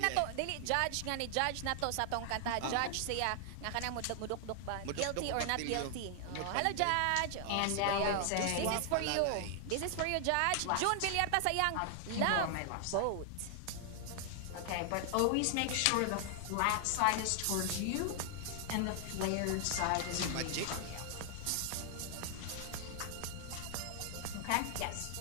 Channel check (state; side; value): different; both; correlation 0.00